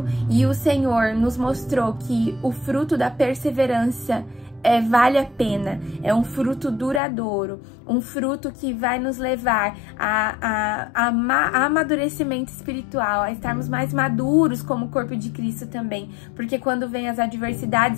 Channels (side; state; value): right; drops out; at 7.0 s